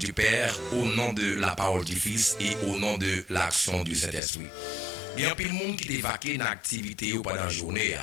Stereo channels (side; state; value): right; drops out; at 4.2 s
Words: Père, au nom de la parole du Fils et au nom de l'action du Saint-Esprit. Il y a un pile monde qui est vaqué dans l'activité pendant la journée.